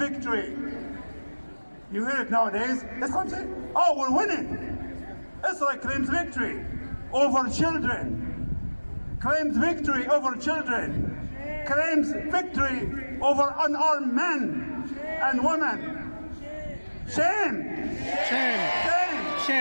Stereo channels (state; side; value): inverted; both; correlation -1.00